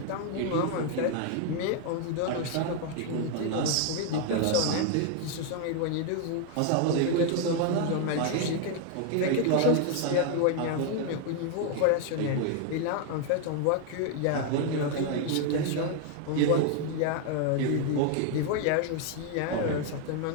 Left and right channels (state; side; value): different; both; correlation 0.00